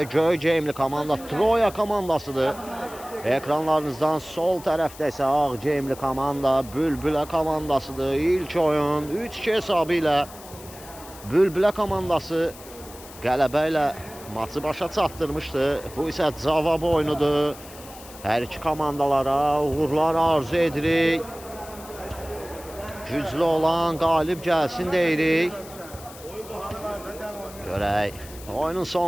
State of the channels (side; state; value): left; noise; hiss, 18 dB below the sound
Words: Göyceğimli komanda Troya komandasıdır. Ekranlarınızdan sol tərəfdə isə Ağceğimli komanda Bülbülə komandasıdır. İlk oyun 3-2 hesabı ilə Bülbülə komandası qələbə ilə maçı başa çatdırmışdı. Bu isə cavab oyunudur. Hər iki komandalara uğurlar arzu edirik. Güclü olan qalib gəlsin deyirik. Görək, oyunun